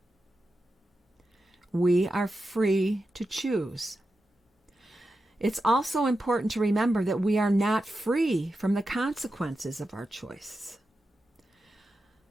We are free to choose. It's also important to remember that we are not free from the consequences of our choices.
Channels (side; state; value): both; normal; correlation 0.90